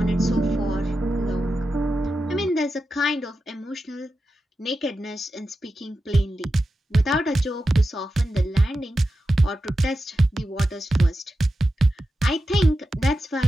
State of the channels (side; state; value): both; normal; correlation 0.91